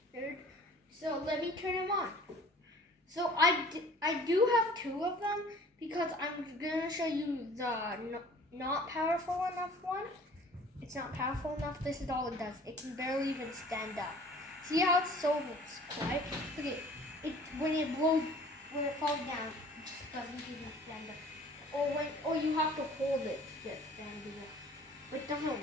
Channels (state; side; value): normal; both; correlation 0.49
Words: weird. So let me turn him on. So I do have two of them because I'm going to show you the not powerful enough one. It's not powerful enough. This is all it does. It can barely even stand up. See how it's so quiet? Look at it. When it falls down, it just doesn't even stand up. Or you have to hold it to get standing up. But it